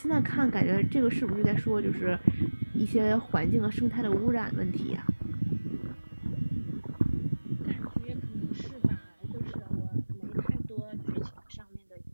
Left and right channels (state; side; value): inverted; both; correlation -1.00